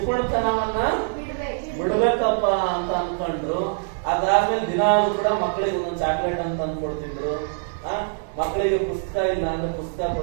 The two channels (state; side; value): silent; left; 63 dB below the other